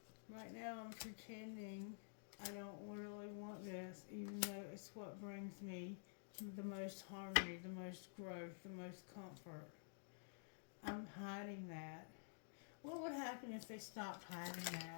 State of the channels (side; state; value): right; silent; digital silence